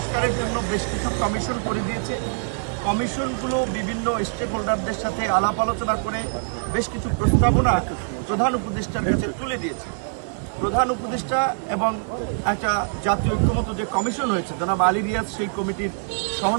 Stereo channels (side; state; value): left; silent; digital silence